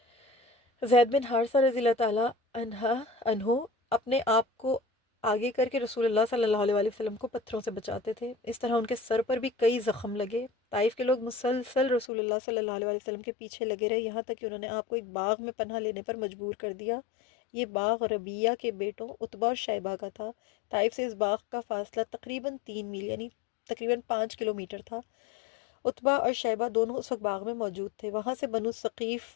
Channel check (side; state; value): right; drops out; at 12.1 s